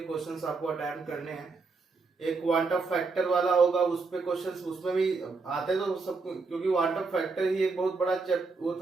क्वेश्चंस आपको अटेम्प्ट करने हैं। एक क्वांटम फैक्टर वाला होगा, उस पे क्वेश्चंस उसमें भी आते तो सब, क्योंकि क्वांटम फैक्टर ही एक बहुत बड़ा वो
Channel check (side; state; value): left; quieter; 4.2 dB